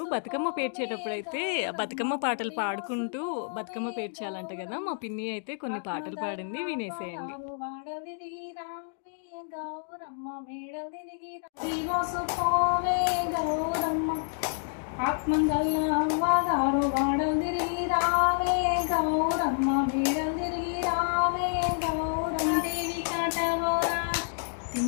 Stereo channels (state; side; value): silent; right; digital silence